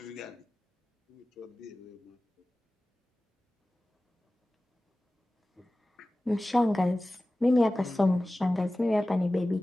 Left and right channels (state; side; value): normal; both; correlation 0.97